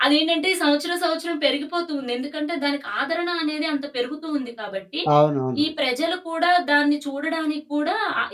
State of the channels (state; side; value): identical; both; correlation 1.00